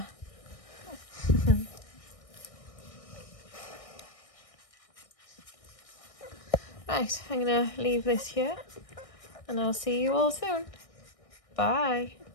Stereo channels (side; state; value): right; late; 1.6 ms